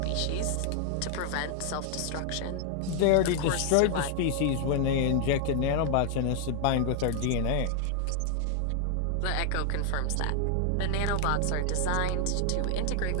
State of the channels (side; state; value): both; different; correlation 0.00